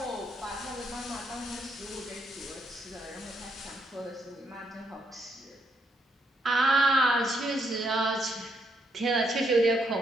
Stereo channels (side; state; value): both; normal; correlation 0.76